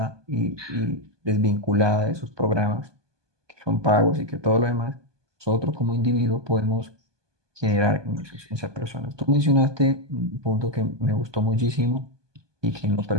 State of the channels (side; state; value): left; late; 1.2 ms